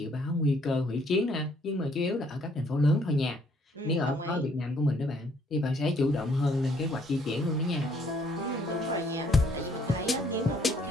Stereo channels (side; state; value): both; normal; correlation 0.65